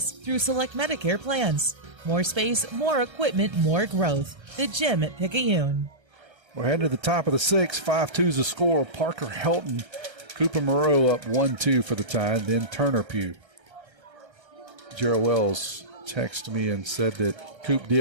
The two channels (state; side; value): late; left; 1.3 ms